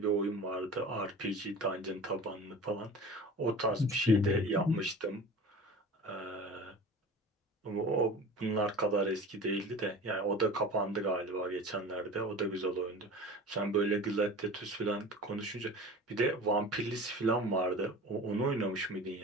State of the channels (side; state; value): both; normal; correlation 0.37